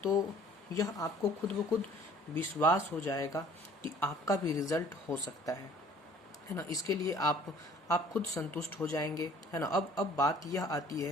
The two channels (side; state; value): both; normal; correlation 0.54